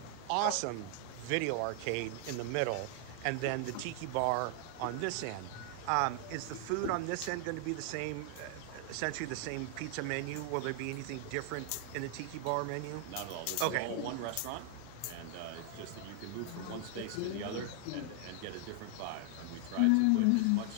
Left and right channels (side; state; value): both; different; correlation 0.00